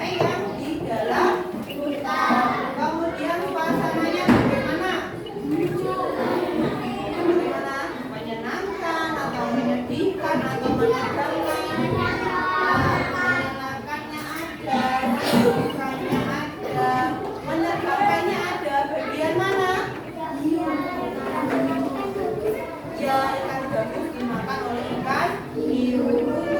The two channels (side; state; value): both; identical; correlation 1.00